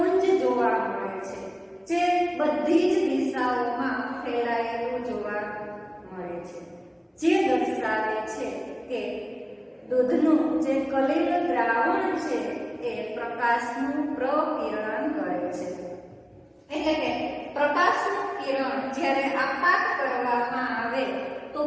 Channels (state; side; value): identical; both; correlation 1.00